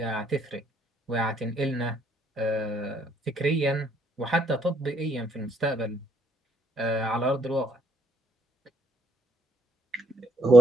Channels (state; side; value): normal; both; correlation 0.70